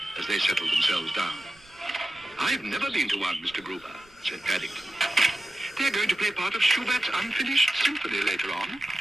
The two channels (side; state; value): right; noise; rumble, 28 dB below the sound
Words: as they settled themselves down. "I've never been to one, Mr. Gruber," said Paddington. "They're going to play part of Schubert's unfinished symphony later on."